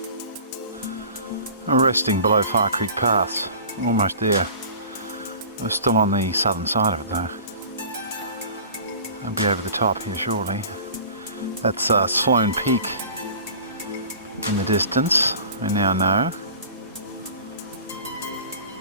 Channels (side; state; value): both; inverted; correlation -0.42